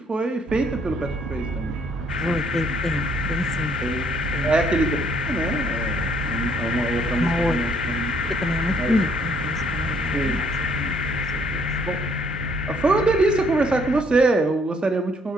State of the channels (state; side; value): normal; both; correlation 0.65